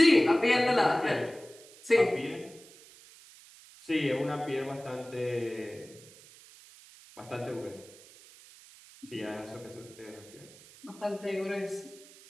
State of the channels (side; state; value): right; noise; hiss, 22 dB below the sound